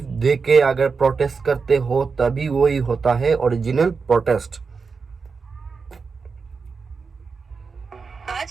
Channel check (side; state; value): left; quieter; 5.0 dB